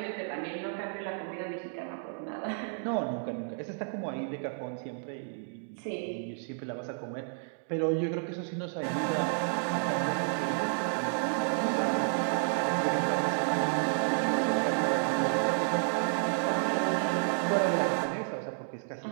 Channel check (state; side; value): silent; left; 57 dB below the other